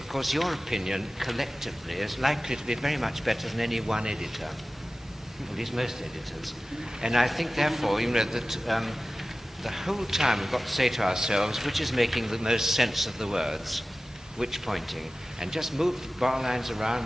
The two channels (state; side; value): normal; both; correlation 0.96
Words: your opinion collectively is likely to be very much better than any one editor, at least most editors. And I think, therefore, that the whole time we've got to say to ourselves, which is making the most sense of the words, which pointing, and just move the bar lines